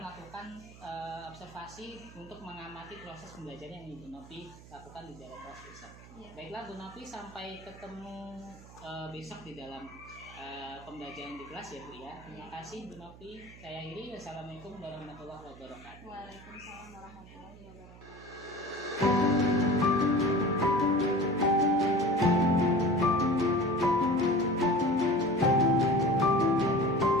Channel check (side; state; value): right; noise; hum, 19 dB below the sound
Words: melakukan observasi untuk mengamati proses pembelajaran yang Ibu Novi lakukan di dalam kelas besok. Iya. Baiklah Bu Novi, sampai ketemu besok di dalam pembelajaran di kelas ya Bu ya. Terima kasih Bu Novi. Saya akhiri. Wassalamualaikum warahmatullahi wabarakatuh. Waalaikumsalam warahmatullahi wabarakatuh.